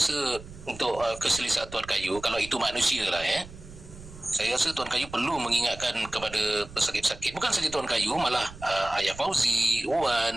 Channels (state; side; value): noise; right; rumble, 16 dB below the sound